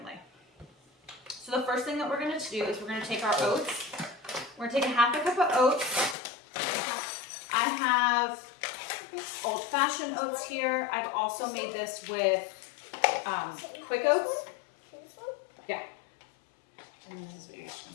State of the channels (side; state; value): right; drops out; at 6.2 s